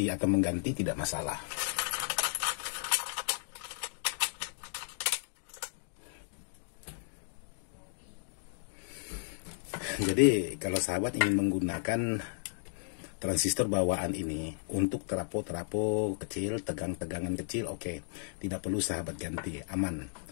atau mengganti, tidak masalah. Jadi kalau sahabat ingin menggunakan transistor bawaan ini untuk terapo kecil, tegangan kecil, oke, tidak perlu sahabat ganti, aman.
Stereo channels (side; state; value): right; silent; digital silence